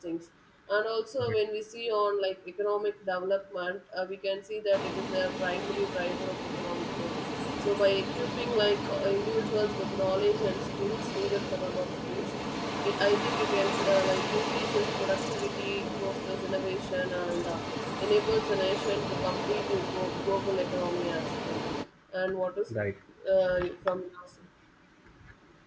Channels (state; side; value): identical; both; correlation 1.00